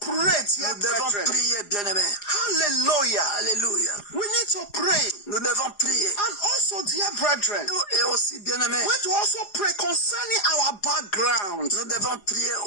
dear Nous devons brethren. prier, bien-aimé. Hallelujah. Alléluia. We need to pray. Nous devons prier. And also, dear brethren, Et aussi, bien-aimé, we need to also pray concerning our background. nous devons prier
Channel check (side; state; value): right; late; 4.9 ms